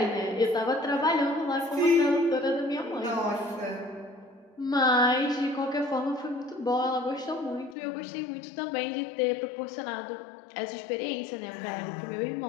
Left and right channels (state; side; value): drops out; right; at 7.8 s